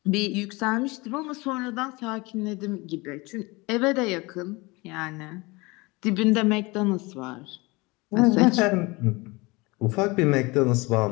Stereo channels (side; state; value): right; quieter; 24.5 dB